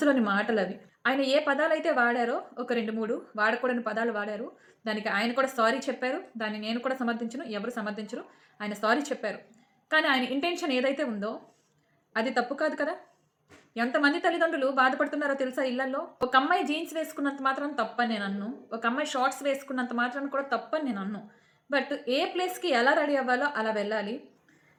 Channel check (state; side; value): identical; both; correlation 1.00